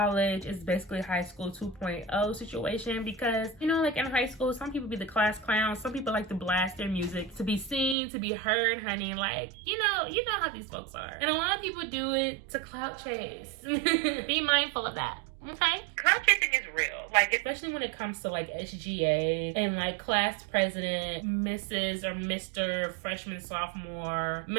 is basically high school 2.0 situation, because, you know, like in high school, some people be the class clowns, some people like to blast their music to be seen, to be heard, honey. Like, you know how these folks are, and a lot of people do it to clout chase. Be mindful of that. Okay? Clout chasing is real. Like, especially when it comes to like SGA and like class president, Mrs. or Mr. freshman, sophomore,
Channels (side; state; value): left; drops out; at 8.0 s